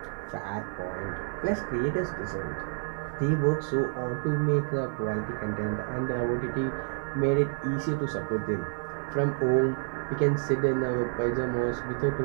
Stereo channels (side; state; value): left; silent; 58 dB below the other